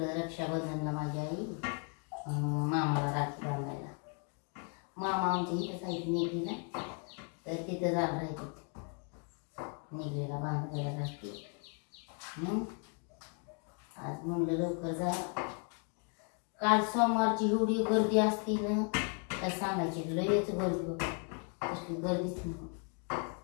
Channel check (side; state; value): right; quieter; 39.6 dB